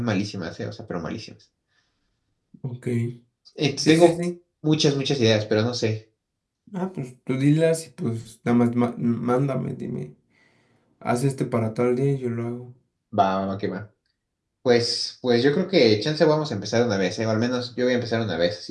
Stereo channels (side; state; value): both; identical; correlation 1.00